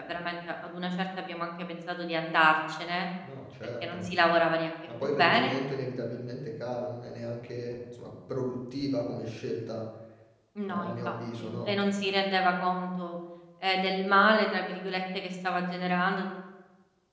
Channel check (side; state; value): both; identical; correlation 1.00